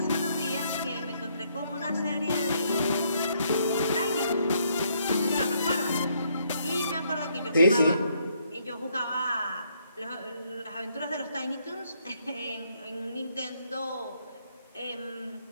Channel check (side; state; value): both; inverted; correlation -0.71